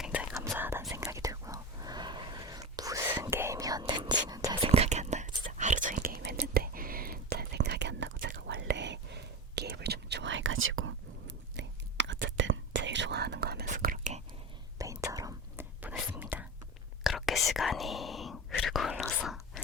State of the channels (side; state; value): both; normal; correlation 0.27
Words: 감사하다는 생각이 들고요. 무슨 게임이었는지는 잘 생각이 안 나요. 진짜 하루 종일 게임했는데 잘 생각이 안 나고 제가 원래 게임을 좀 좋아해가지고 네, 어쨌든 제일 좋아하는 거 하면서 그렇게 메인처럼 보냈습니다. 그렇게 시간이 흐르고 흘러서